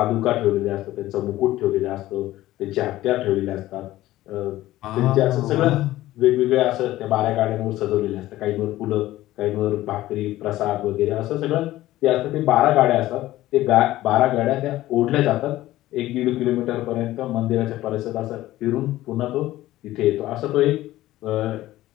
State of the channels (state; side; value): quieter; right; 15.7 dB